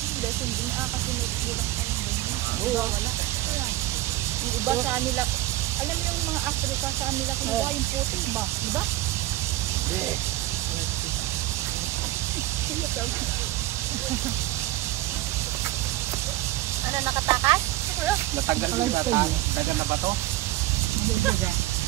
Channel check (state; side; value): quieter; left; 16.5 dB